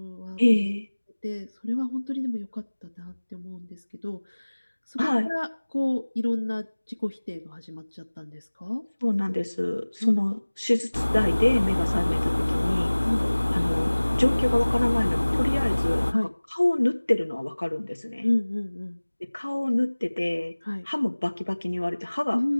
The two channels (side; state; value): both; inverted; correlation -1.00